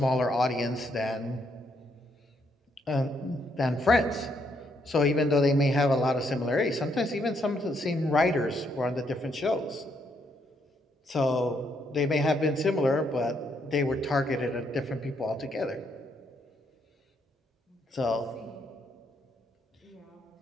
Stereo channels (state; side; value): normal; both; correlation 0.74